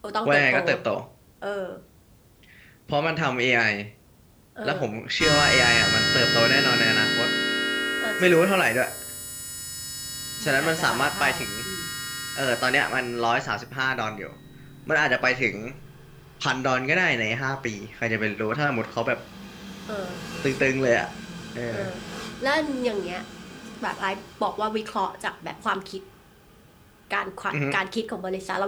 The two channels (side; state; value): both; identical; correlation 1.00